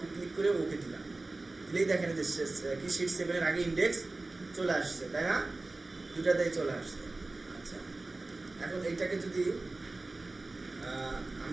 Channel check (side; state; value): left; quieter; 3.2 dB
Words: ক্লিক করে ওকে দিলাম, দিলেই দেখেন যে কি শিট 7-এর আগে ইন্ডেক্স চলে আসছে, তাই না? 2টাতেই চলে আসছে। আচ্ছা, এখন এইটাকে যদি